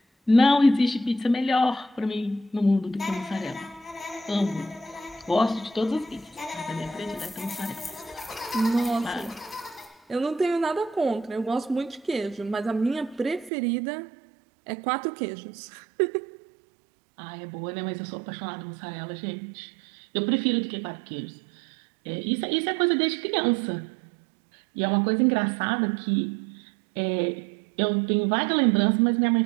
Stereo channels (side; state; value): left; drops out; at 13.5 s